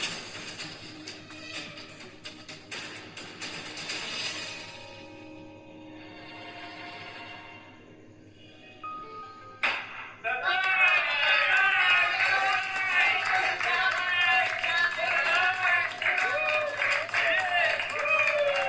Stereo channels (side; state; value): both; identical; correlation 1.00